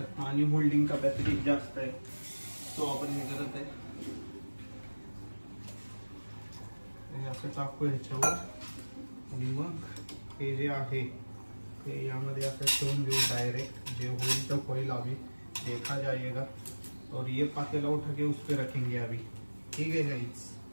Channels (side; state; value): both; inverted; correlation -1.00